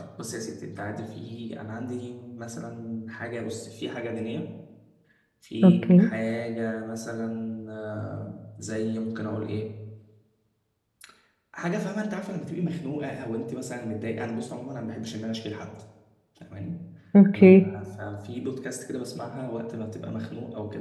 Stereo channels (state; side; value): identical; both; correlation 1.00